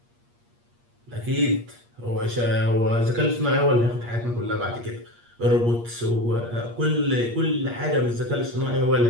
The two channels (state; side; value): late; left; 8.5 ms